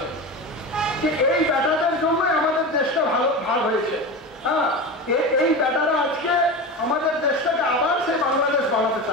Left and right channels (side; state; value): both; normal; correlation 0.26